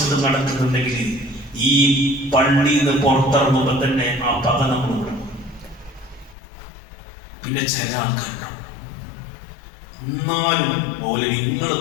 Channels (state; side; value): drops out; right; at 6.4 s